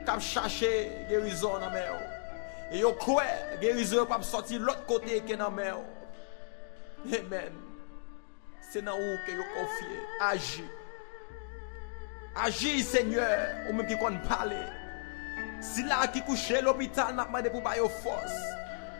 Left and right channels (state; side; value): silent; right; digital silence